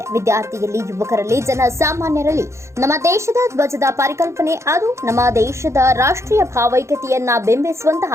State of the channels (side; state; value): left; late; 0.14 ms